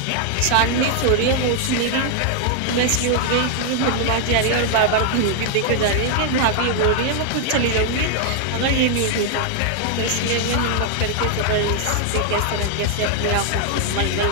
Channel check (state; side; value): different; both; correlation 0.00